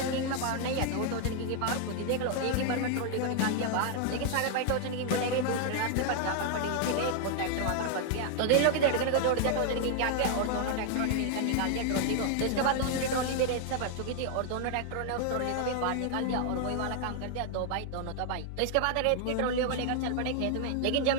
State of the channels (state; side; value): different; both; correlation 0.00